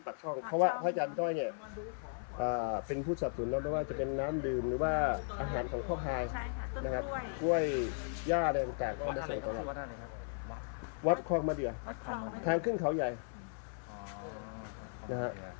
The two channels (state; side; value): silent; right; 53 dB below the other